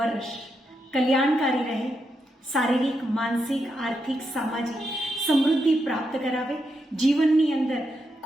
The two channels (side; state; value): both; normal; correlation 0.83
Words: કલ્યાણકારી રહે, શારીરિક, માનસિક, આર્થિક, સામાજિક સમૃદ્ધિ પ્રાપ્ત કરાવે, જીવનની અંદર